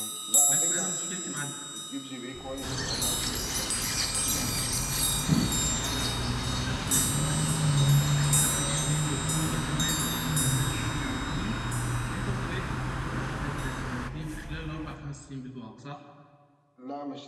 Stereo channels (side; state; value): both; identical; correlation 1.00